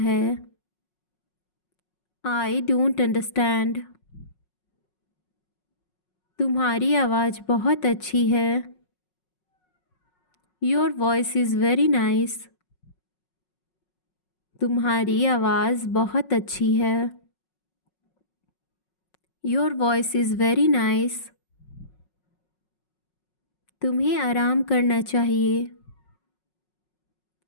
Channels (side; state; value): right; late; 5.5 ms